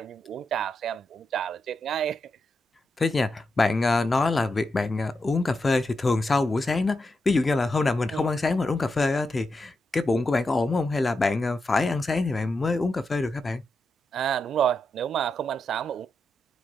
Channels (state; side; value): normal; both; correlation 0.86